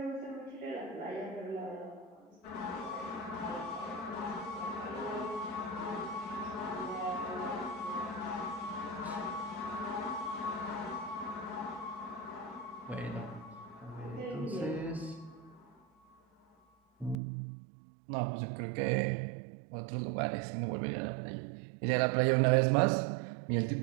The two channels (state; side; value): drops out; left; at 17.2 s